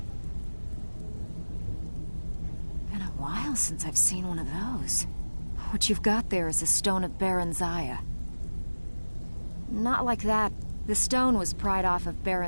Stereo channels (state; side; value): inverted; both; correlation -1.00